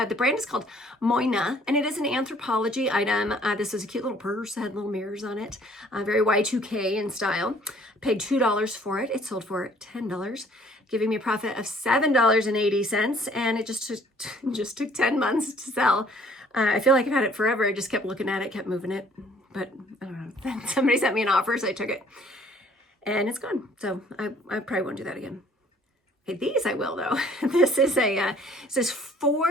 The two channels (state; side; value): normal; both; correlation 0.58